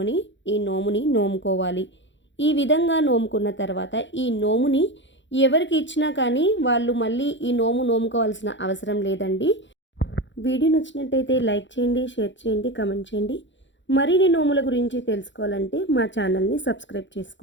ఈ నోముని నోముకోవాలి. ఈ విధంగా నోముకున్న తర్వాత ఈ నోముని ఎవరికి ఇచ్చినా కానీ వాళ్ళు మళ్ళీ ఈ నోము నోముకోవాల్సిన అవసరం లేదండి. వీడియో నచ్చినట్టయితే లైక్ చేయండి, షేర్ చేయండి, కామెంట్ చేయండి. మరిన్ని నోముల గురించి తెలుసుకోవాలంటే మా ఛానల్ని సబ్స్క్రైబ్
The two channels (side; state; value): right; late; 0.54 ms